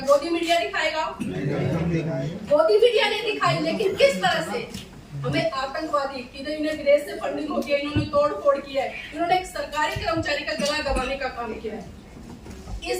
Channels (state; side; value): identical; both; correlation 1.00